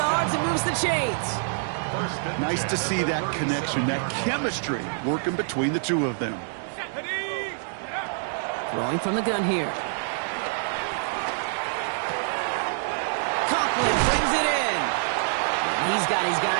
and moves the chains. Nice to see that connection, that chemistry working between the two of them. Throwing from the gun here. Conklin brings it in. He's got his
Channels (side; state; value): left; silent; digital silence